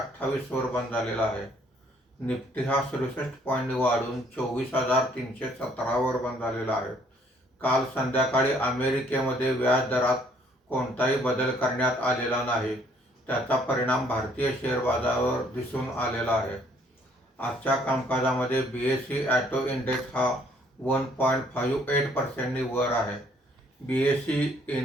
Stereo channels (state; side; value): normal; both; correlation 0.64